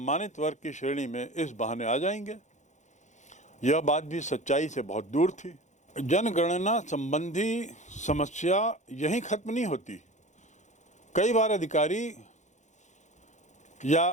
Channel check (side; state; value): right; late; 0.35 ms